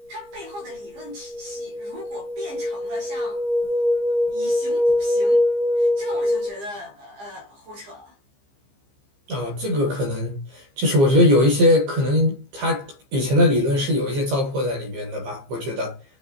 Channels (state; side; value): late; left; 15 ms